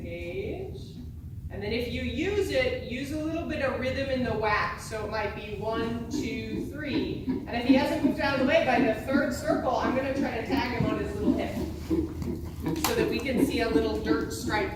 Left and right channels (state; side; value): identical; both; correlation 1.00